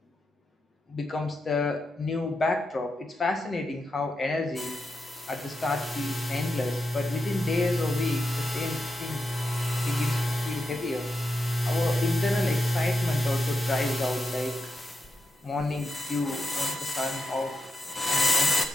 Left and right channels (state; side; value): normal; both; correlation 0.87